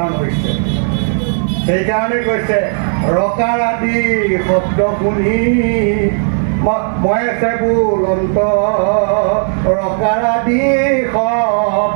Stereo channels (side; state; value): left; silent; digital silence